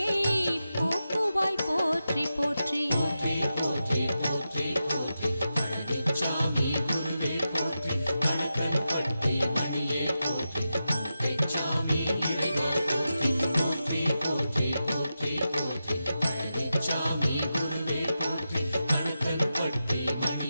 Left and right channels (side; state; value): both; inverted; correlation -0.90